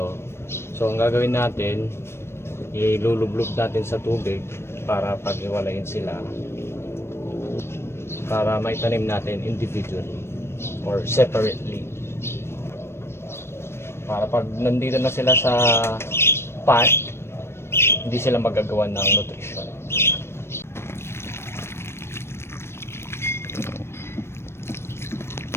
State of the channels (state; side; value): late; right; 0.12 ms